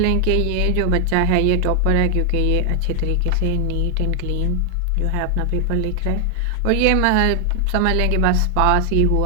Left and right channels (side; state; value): both; different; correlation 0.00